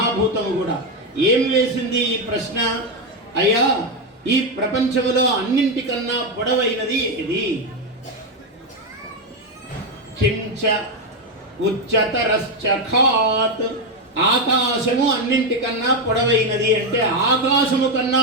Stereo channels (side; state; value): both; normal; correlation 0.08